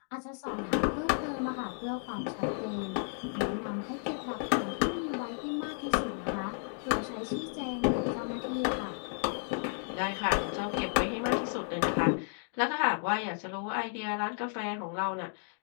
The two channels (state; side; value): silent; right; 56 dB below the other